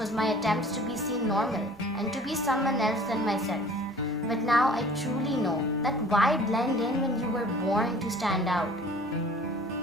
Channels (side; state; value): both; normal; correlation 0.48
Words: my attempts to be seen normal and to be someone else than myself. But now I truly know that why blend in when you were born to stand out?